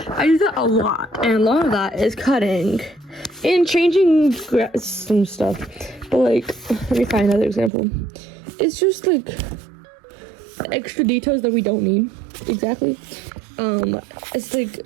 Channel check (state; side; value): drops out; left; at 7.7 s